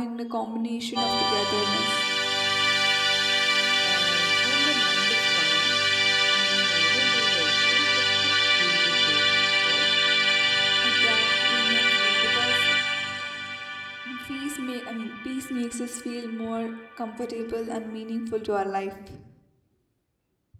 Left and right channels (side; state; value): both; identical; correlation 1.00